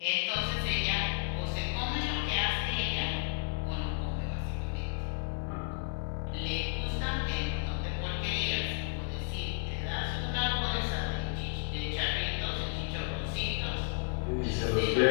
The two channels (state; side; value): silent; right; digital silence